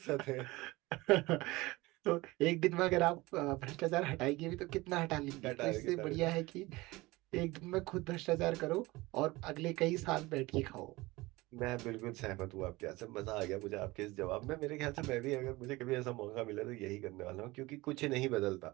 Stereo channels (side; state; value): left; quieter; 21.0 dB